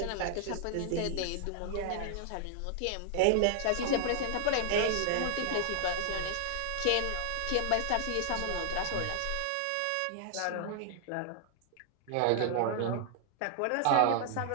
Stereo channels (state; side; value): different; both; correlation 0.00